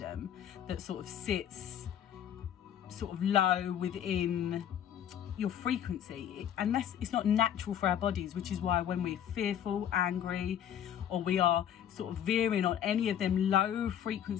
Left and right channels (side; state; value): right; quieter; 9.8 dB